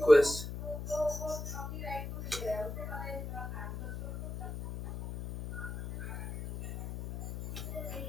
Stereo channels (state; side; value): noise; left; hum, 7 dB below the sound